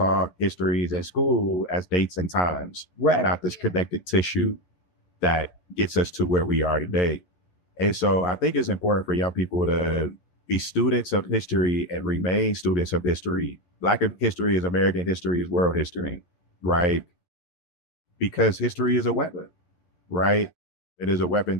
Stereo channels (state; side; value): late; right; 11 ms